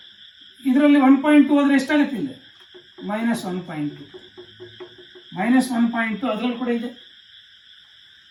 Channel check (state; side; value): identical; both; correlation 1.00